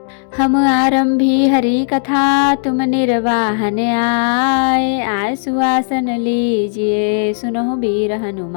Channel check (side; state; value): right; silent; digital silence